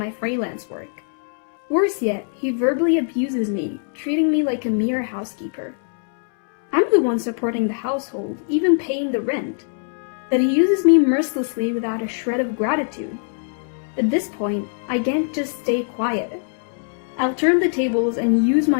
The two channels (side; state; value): right; silent; 64 dB below the other